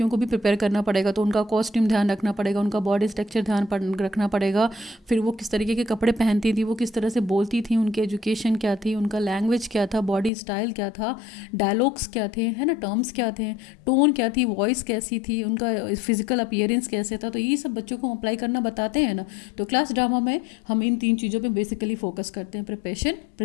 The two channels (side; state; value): right; drops out; at 10.3 s